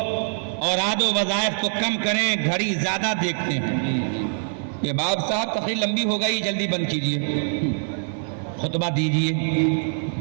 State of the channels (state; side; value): silent; left; 63 dB below the other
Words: اوراد و وظائف کو کم کریں، گھڑی زیادہ دیکھتے ہیں، یہ باب صاحب تقریر لمبی ہو گئی، جلدی بند کیجئے، خطبہ دیجئے،